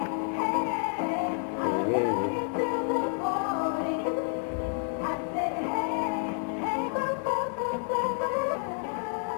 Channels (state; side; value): silent; right; 58 dB below the other